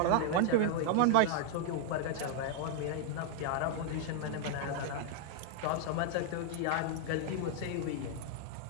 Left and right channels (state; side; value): different; both; correlation -0.01